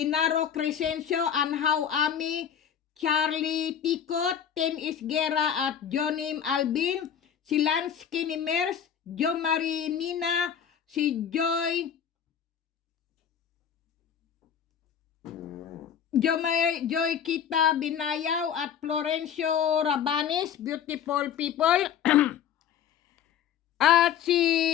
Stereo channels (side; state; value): right; quieter; 8.7 dB